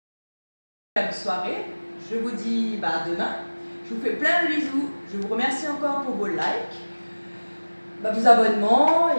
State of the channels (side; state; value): both; inverted; correlation -1.00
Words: Bonne soirée, je vous dis bah, à demain. Je vous fais plein de bisous, je vous remercie encore pour vos likes, vos abonnements,